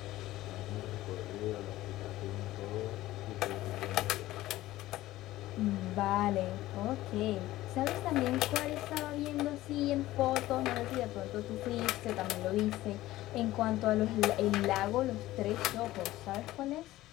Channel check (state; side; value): quieter; right; 16.1 dB